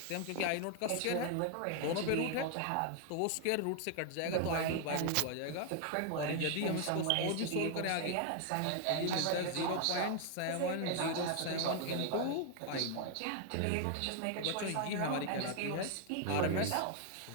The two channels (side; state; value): both; different; correlation 0.00